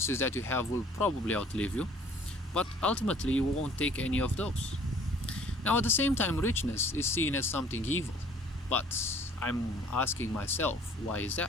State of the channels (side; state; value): both; normal; correlation 0.54